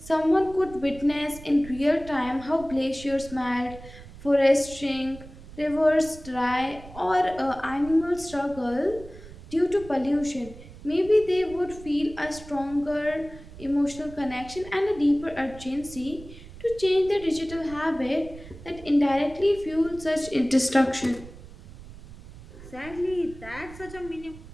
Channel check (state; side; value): noise; right; rumble, 17 dB below the sound